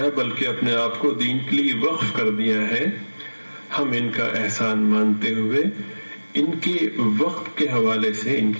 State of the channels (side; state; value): both; inverted; correlation -1.00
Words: بلکہ اپنے آپ کو دین کے لیے وقف کر دیا ہے، ہم ان کا احسان مانتے ہوئے ان کے وقت کے حوالے سے ان